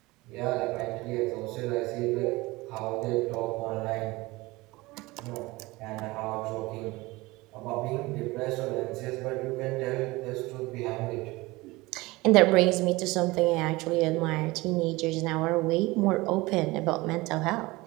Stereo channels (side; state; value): left; quieter; 21.6 dB